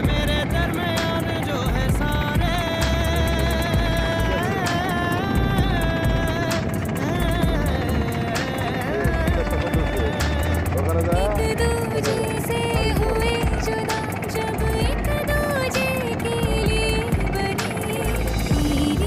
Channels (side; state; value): both; identical; correlation 1.00